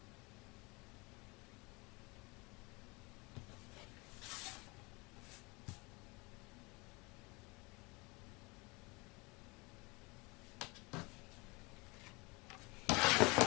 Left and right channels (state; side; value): quieter; right; 26.6 dB